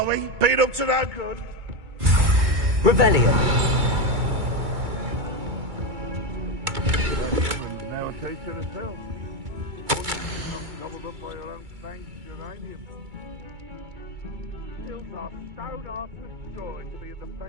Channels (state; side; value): late; left; 2.3 ms